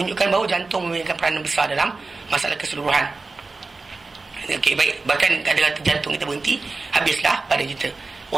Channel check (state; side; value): quieter; left; 3.8 dB